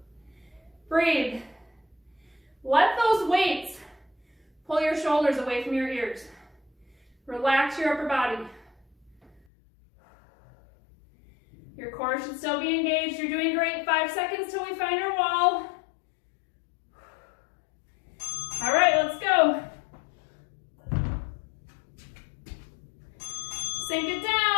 Breathe. Let those weights pull your shoulders away from your ears. Relax your upper body. Your core should still be engaged. You're doing great. 5 seconds till we find our wall. All right, let's go. Sink it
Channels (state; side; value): drops out; right; at 9.3 s